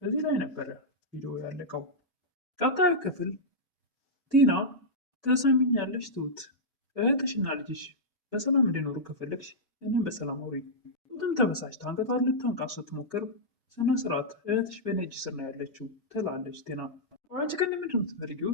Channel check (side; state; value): both; normal; correlation -0.10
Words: እዚህ ላይ ነበረ ቪዲዮ ያለቀው። ቀጣዩ ክፍል ቲና ተሰሚኛለሽ ትሁት፣ እህትሽና ልጅሽ በሰላም እንዲኖሩ ከፈለግሽ እኔም በሰላም አውሪ። ትሁትም ተበሳጭታ አንገቷን ልታንቃት ስትሞክር ስነ ስርዓት እህትሽ በእኔ እጅ ስር ነው ያለችው ትላለች ቲና። አንቺ ግን ምንድን ነው የምትፈልጊው